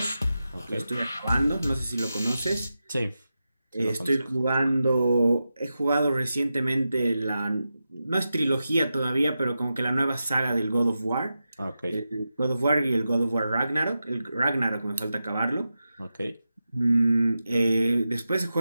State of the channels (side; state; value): both; inverted; correlation -0.91